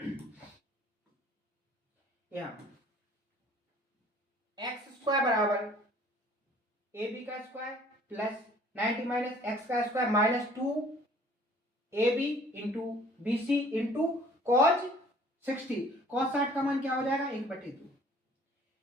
यहाँ एक्स स्क्वायर बराबर AB का स्क्वायर प्लस 90 माइनस x का square minus 2AB into BC into cos 60। Cause 60 का मान क्या हो जाएगा 1/2।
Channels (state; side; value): normal; both; correlation 0.54